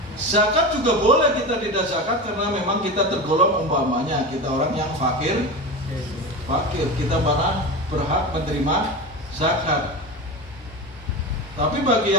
Zakat juga boleh kita tidak zakat karena memang kita tergolong, umpamanya kita orang yang fakir, kita mana berhak menerima zakat. Tapi bagi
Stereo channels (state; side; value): normal; both; correlation 0.25